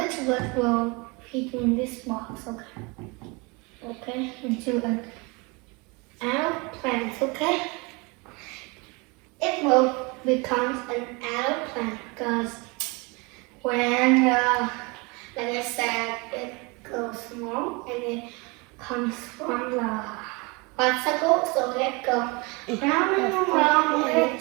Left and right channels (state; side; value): quieter; left; 28.1 dB